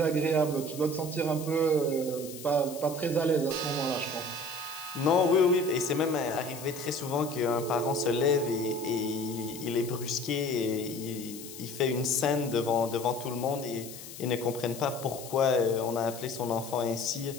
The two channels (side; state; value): left; noise; hiss, 13 dB below the sound